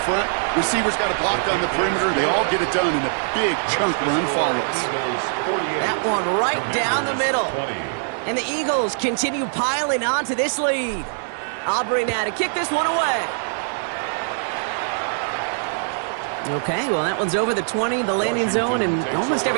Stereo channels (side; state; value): left; silent; 64 dB below the other